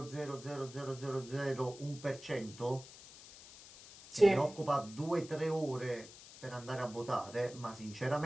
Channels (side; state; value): left; noise; hiss, 17 dB below the sound